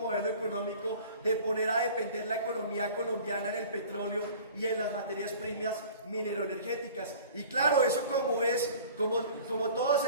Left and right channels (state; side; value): inverted; both; correlation -0.44